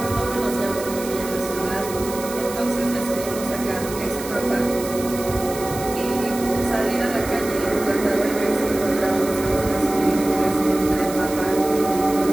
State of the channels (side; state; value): right; noise; hiss, 11 dB below the sound